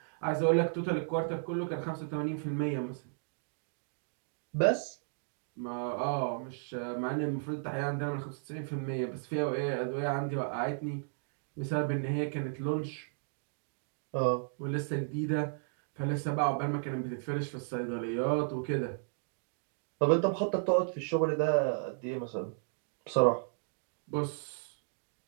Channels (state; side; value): silent; left; digital silence